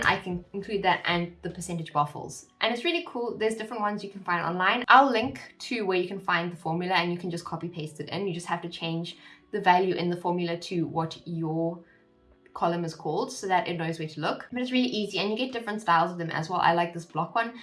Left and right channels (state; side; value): identical; both; correlation 1.00